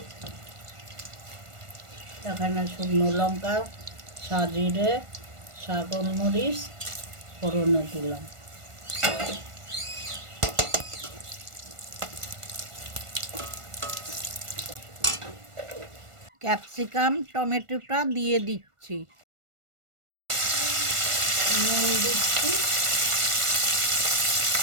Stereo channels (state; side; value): late; left; 1.4 ms